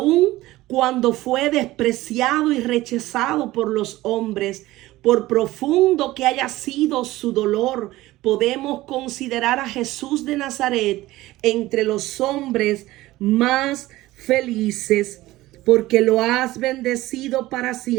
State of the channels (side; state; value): left; quieter; 17.4 dB